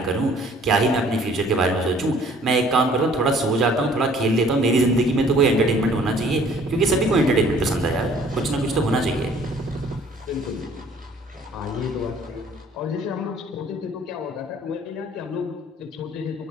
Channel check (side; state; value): both; normal; correlation 0.56